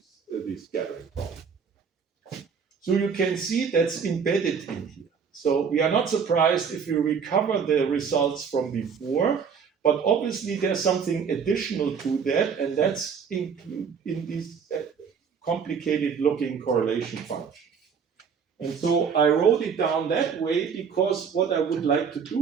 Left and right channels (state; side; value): quieter; left; 6.4 dB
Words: this scattering problem. So you can see that's embedded in here. So we are not surprised if we recover the results from before, but obviously there's something additional to that, and that's in this complicated looking correlation function. And so I wrote it down that way because what I would like to